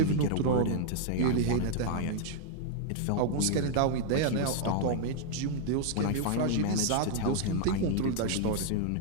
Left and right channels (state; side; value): different; both; correlation -0.01